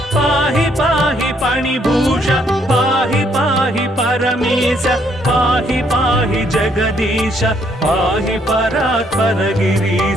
पाहि पाहि पणिभूष पाहि पाहि परमेश पाहि पाहि जगदीश पाहि परात्पर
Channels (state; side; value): normal; both; correlation 0.69